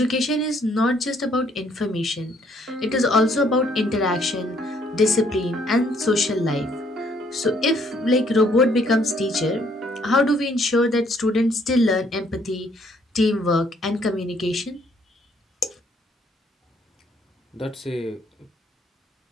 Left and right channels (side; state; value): both; normal; correlation 0.66